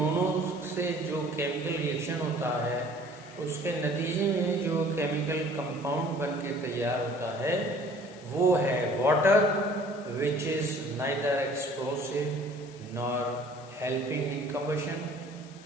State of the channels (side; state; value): left; noise; hiss, 22 dB below the sound